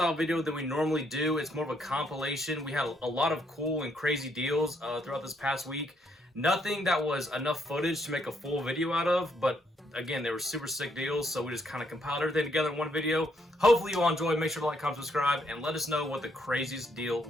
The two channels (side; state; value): both; normal; correlation 0.73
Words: video than we normally do. It's more of a compilation. We had a lot of cool and crazy deals throughout this past week. Nothing that was enough footage to make a full video out of, but again, they were super sick deals, so we just kind of compiled everything together in one video. Hopefully you all enjoyed. Make sure to like, comment, subscribe, and let us know what the craziest deal